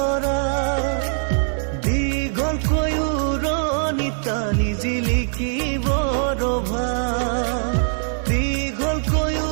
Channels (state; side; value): silent; left; 64 dB below the other